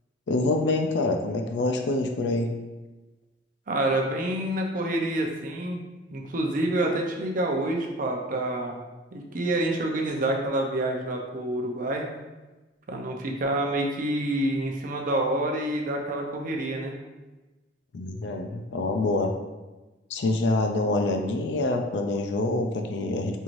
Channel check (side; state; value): both; normal; correlation 0.37